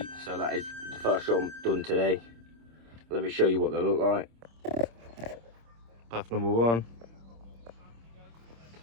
so that is the first job done today. Let me show you what they look like. Path number 1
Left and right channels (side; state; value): left; late; 26 ms